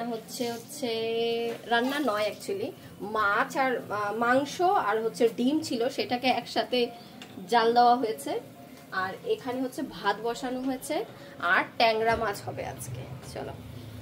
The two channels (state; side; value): identical; both; correlation 1.00